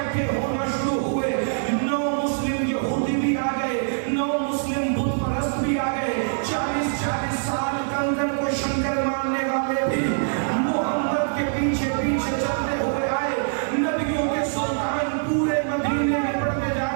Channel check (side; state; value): left; silent; digital silence